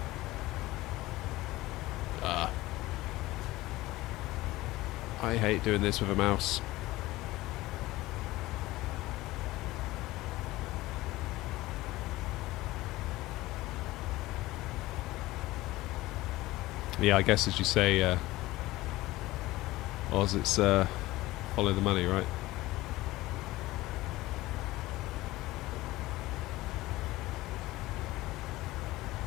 I hate doing this with a mouse. Yeah, I guess as you say, Oz, it's follow the money, right?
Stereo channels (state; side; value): quieter; right; 18.3 dB